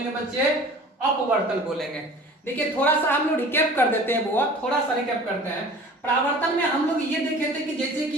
बच्चे? अपवर्तन बोलेंगे। देखिए थोड़ा सा हम लोग रिकैप कर देते हैं, वो थोड़ा सा रिकैप करते हैं। परावर्तन में हम लोग ये देखे थे कि जैसे कि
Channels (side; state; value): both; normal; correlation 0.43